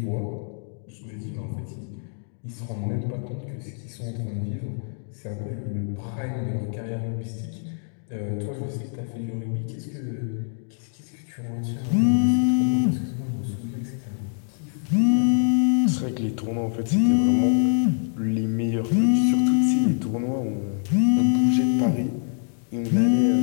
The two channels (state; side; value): silent; right; 62 dB below the other